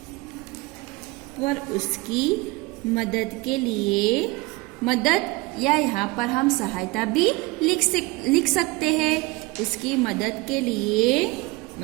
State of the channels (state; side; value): quieter; left; 22.4 dB